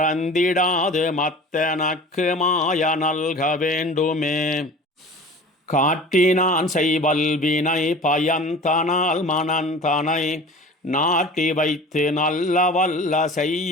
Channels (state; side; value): normal; both; correlation 0.40